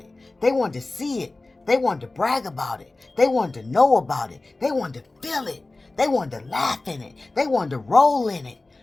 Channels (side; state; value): right; quieter; 3.1 dB